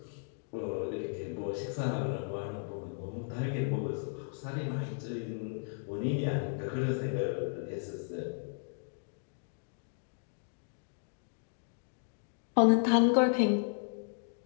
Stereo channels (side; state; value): right; silent; digital silence